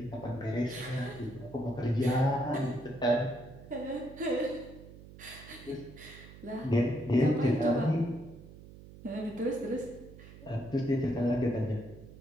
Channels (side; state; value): right; noise; hum, 17 dB below the sound